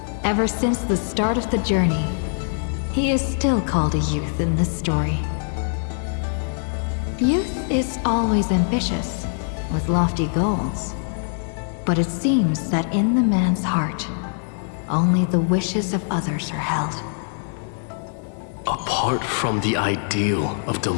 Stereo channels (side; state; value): right; silent; digital silence